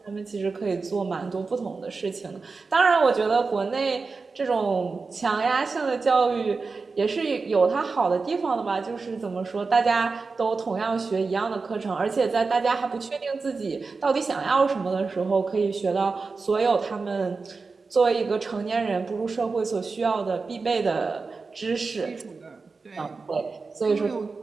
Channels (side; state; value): left; quieter; 4.3 dB